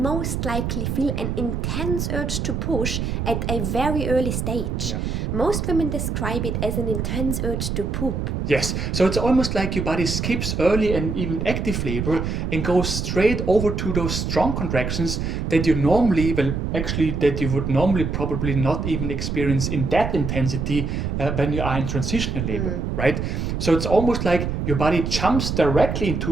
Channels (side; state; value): right; noise; rumble, 2 dB below the sound